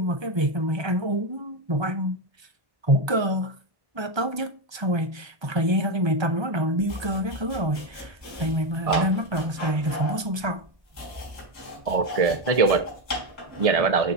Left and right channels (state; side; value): late; left; 1.2 ms